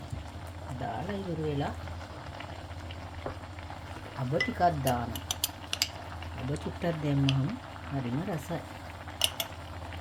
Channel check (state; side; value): identical; both; correlation 1.00